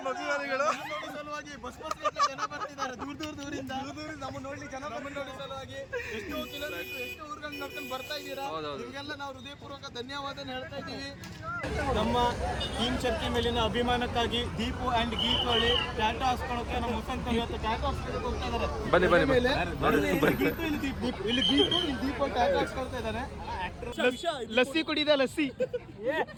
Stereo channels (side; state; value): both; identical; correlation 1.00